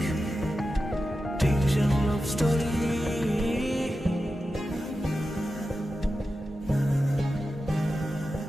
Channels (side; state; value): both; normal; correlation 0.92